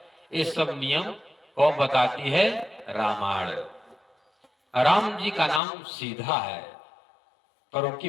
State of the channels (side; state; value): right; drops out; at 5.6 s